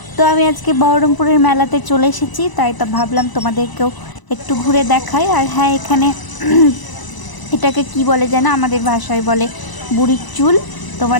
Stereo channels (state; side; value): late; right; 1.0 ms